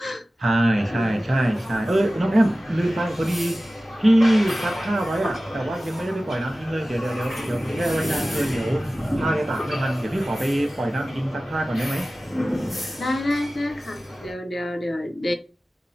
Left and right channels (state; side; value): normal; both; correlation 0.96